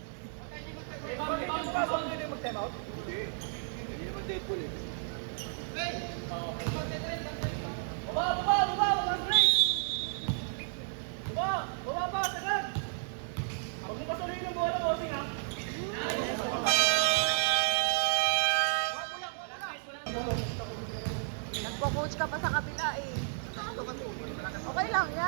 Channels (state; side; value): silent; left; digital silence